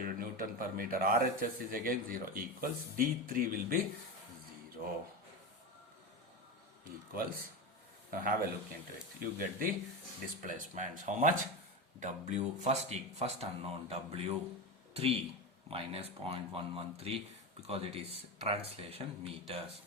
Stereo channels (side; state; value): both; normal; correlation 0.19